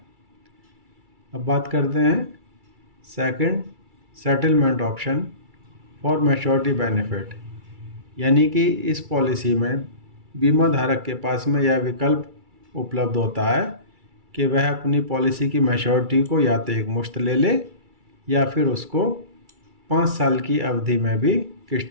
अब बात करते हैं second, settlement option for maturity benefit, यानी कि इस पॉलिसी में बीमा धारक के पास में यह विकल्प उपलब्ध होता है कि वह अपनी पॉलिसी की मैच्योरिटी को या तो एक मुश्त ले ले या फिर उसको 5 साल की अवधि में भी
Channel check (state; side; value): late; left; 2.3 ms